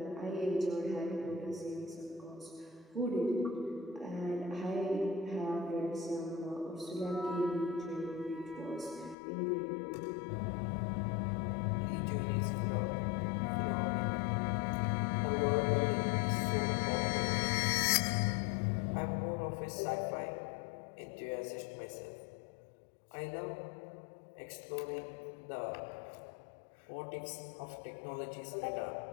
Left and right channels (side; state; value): right; drops out; at 9.2 s